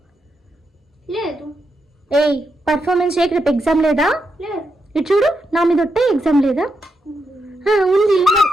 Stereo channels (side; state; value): both; normal; correlation 0.83